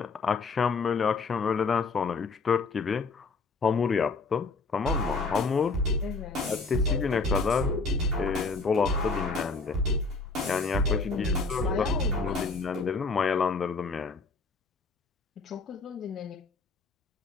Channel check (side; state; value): right; quieter; 4.1 dB